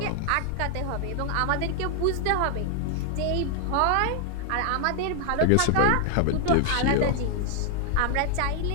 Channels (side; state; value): both; different; correlation 0.00